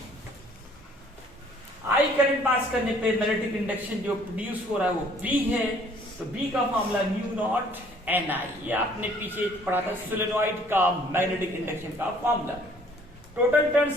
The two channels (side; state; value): both; normal; correlation 0.59